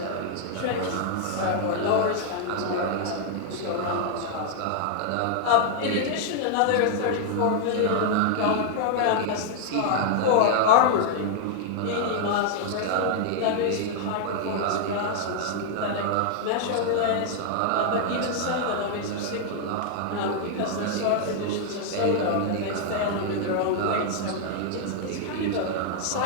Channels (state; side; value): different; both; correlation -0.01